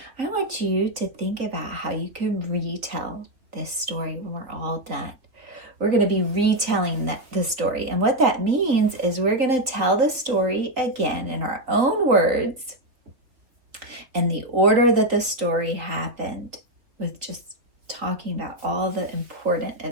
I want you to think about how you can retell this story when we're all done. We're going to be retelling the story. And what that means is we're going to tell the story again in our own words and the order that the story happened, with just talking about all the important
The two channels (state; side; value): late; left; 3.6 ms